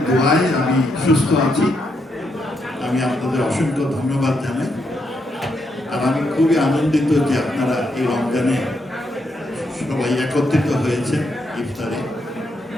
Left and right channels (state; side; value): normal; both; correlation 0.79